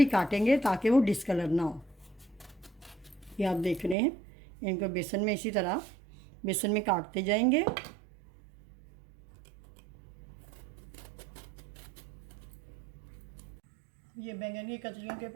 काटेंगे ताकि वो डिस्कलर ना हो। ये आप देख रहे हैं, इनको बेसन में इसी तरह बेसन में काटते जाएंगे। ये बैंगन की कतलियों के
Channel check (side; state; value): left; drops out; at 4.0 s